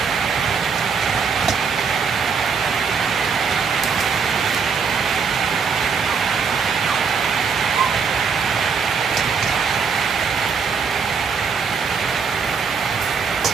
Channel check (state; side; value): quieter; left; 5.8 dB